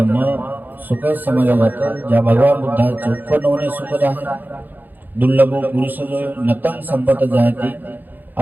सुख समजला जातं, ज्या भगवान बुद्धाचे उत्पन्न होणे सुखद आहे. दुर्लभो पुरुष जो नतंग संपत जायते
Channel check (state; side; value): late; left; 0.087 ms